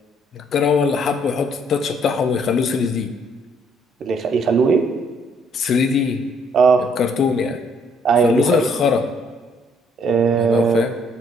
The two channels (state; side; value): normal; both; correlation 0.66